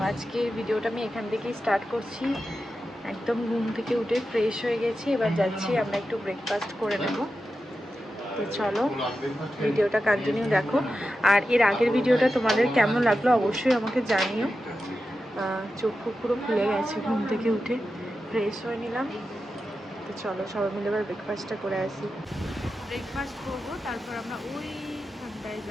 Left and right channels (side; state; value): both; normal; correlation 0.91